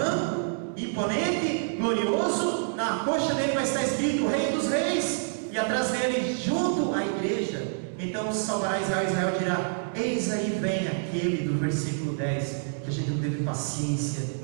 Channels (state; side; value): silent; left; digital silence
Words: imponente, glorioso. Na coxa dele vai estar escrito: Rei dos Reis, e atrás dele, junto à igreja, então salvará Israel. Israel dirá: eis aí vem aquele do versículo 10, que a gente não teve paciência